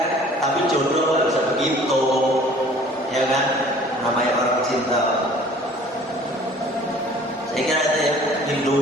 Tapi jodoh nggak bisa begitu, ya kan. Namanya orang cinta. Saya kira itu ya.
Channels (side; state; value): both; normal; correlation 0.51